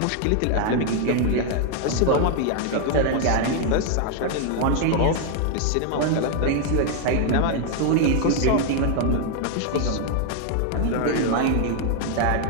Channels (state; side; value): different; both; correlation 0.00